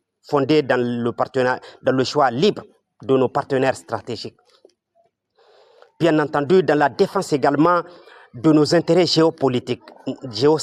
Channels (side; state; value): both; identical; correlation 1.00